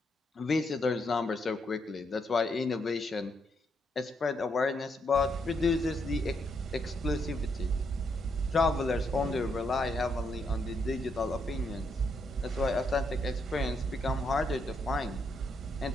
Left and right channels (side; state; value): both; normal; correlation 0.77